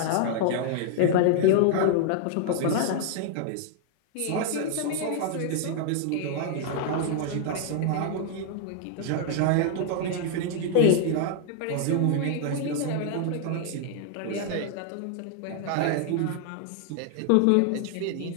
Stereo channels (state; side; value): different; both; correlation 0.00